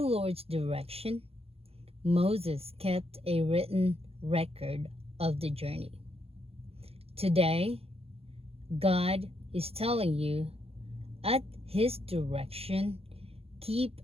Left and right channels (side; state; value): left; late; 0.29 ms